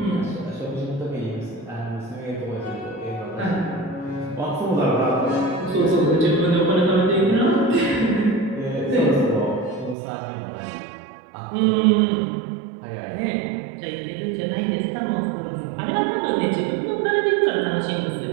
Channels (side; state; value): left; drops out; at 10.0 s